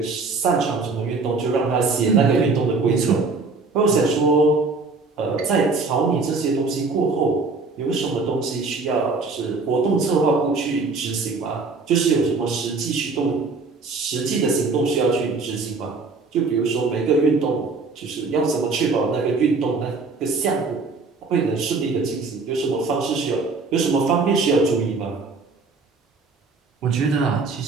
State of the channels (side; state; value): left; quieter; 4.1 dB